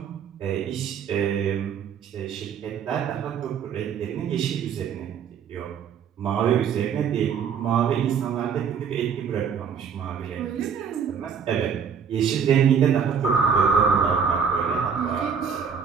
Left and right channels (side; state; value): left; quieter; 7.0 dB